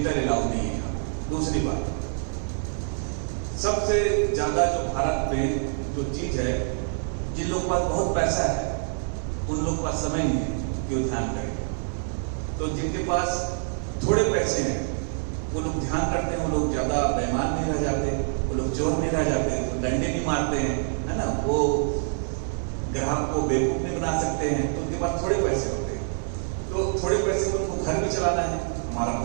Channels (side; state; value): left; silent; digital silence